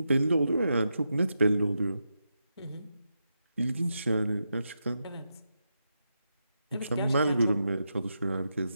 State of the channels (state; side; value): inverted; both; correlation -0.86